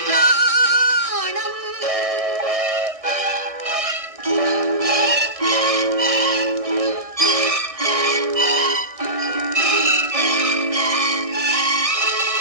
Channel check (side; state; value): left; late; 1.6 ms